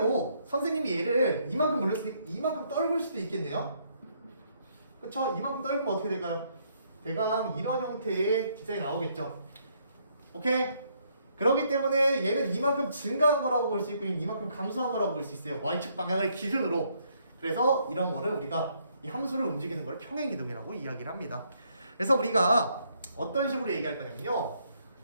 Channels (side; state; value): both; inverted; correlation -0.71